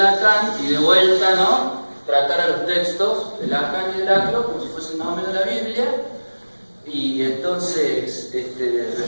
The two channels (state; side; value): inverted; both; correlation -1.00